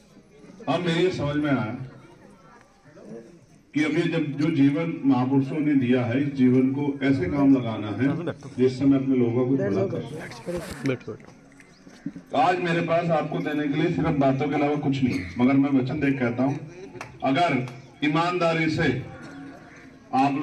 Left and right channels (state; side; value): identical; both; correlation 1.00